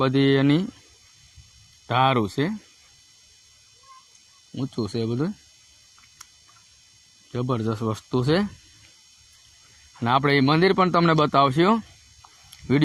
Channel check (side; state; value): both; identical; correlation 1.00